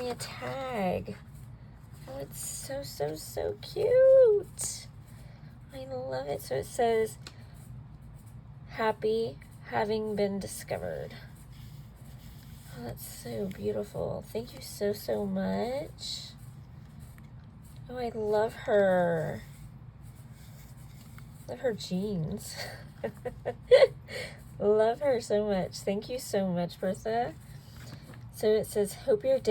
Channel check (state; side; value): identical; both; correlation 1.00